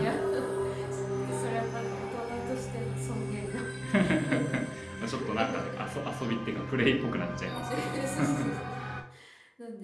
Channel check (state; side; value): identical; both; correlation 1.00